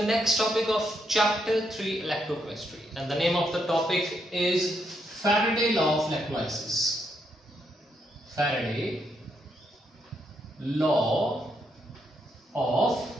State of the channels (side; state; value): both; normal; correlation 0.78